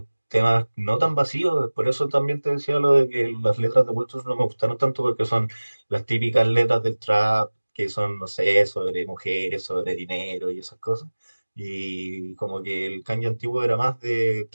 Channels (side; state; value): both; inverted; correlation -1.00